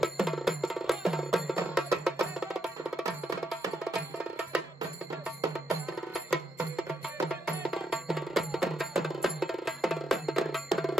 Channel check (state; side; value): normal; both; correlation 0.79